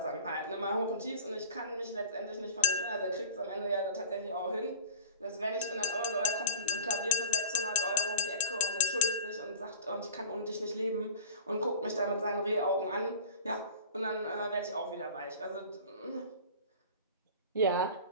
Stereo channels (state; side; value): inverted; both; correlation -0.39